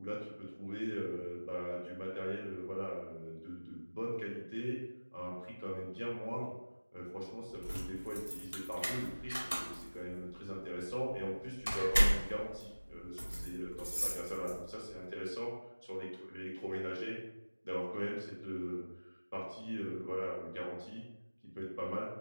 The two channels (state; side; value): inverted; both; correlation -1.00